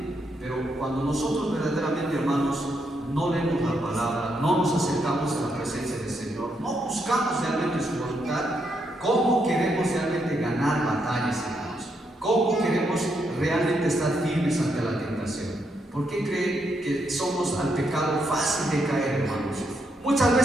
Pero cuando nosotros verdaderamente, hermanos, no leemos la palabra, no nos acercamos a la presencia del Señor, no buscamos realmente su voluntad, ¿cómo queremos realmente ganar batallas, hermanos? ¿Cómo queremos realmente estar firmes ante la tentación? ¿Por qué creen que somos al pecado fácil de caer, hermanos? Muchas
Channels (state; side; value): normal; both; correlation 0.78